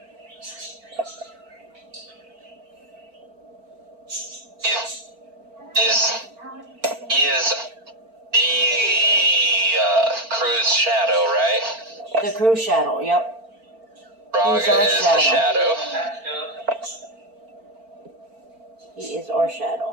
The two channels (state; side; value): late; left; 4.4 ms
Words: He is the crew's shadow, right? The crew shadow, yep. Raga He's our is the shadow. He is our